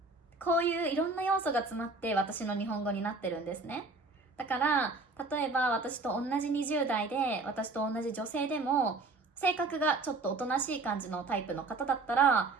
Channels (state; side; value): quieter; left; 3.6 dB